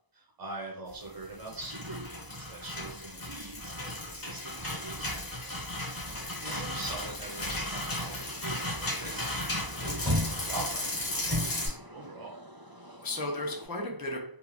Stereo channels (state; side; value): late; left; 1.0 ms